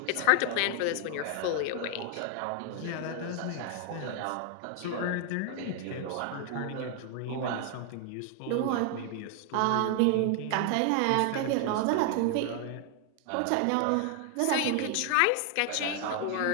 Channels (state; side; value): different; both; correlation 0.00